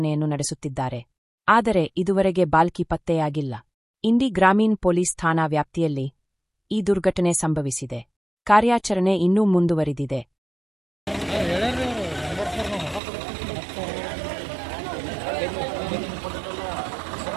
ನಡೆಸುತ್ತಿದ್ದಾರೆ. ಆದರೆ ಇದುವರೆಗೆ ಬಾಲ್ಕಿ ಪತ್ತೆಯಾಗಿಲ್ಲ. ಇಂಡಿ ಗ್ರಾಮೀಣ ಪೊಲೀಸ್ ಠಾಣಾ ವ್ಯಾಪ್ತಿಯಲ್ಲಿ ಈ ದುರ್ಘಟನೆ ಸಂಭವಿಸಿದೆ. ಕಾರ್ಯಾಚರಣೆ ಇನ್ನೂ ಮುಂದುವರಿದಿದೆ.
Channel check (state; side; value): drops out; left; at 13.0 s